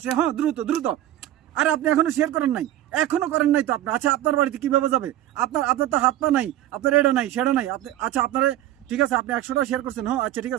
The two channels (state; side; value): quieter; left; 13.2 dB